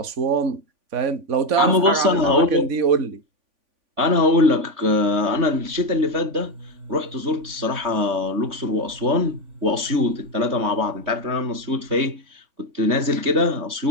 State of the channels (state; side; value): late; left; 3.5 ms